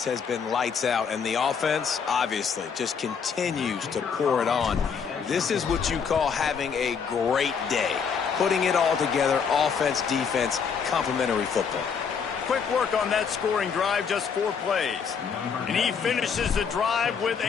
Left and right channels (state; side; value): quieter; right; 6.4 dB